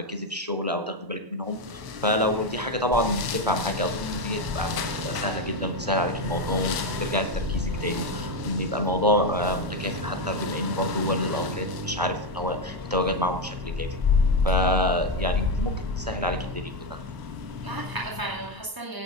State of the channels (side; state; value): left; late; 1.0 ms